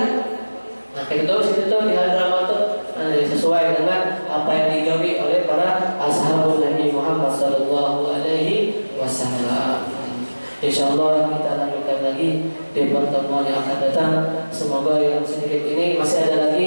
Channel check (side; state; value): both; inverted; correlation -1.00